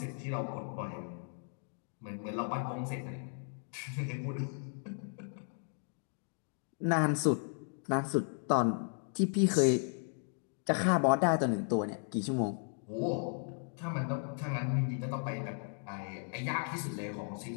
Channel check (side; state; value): right; silent; 54 dB below the other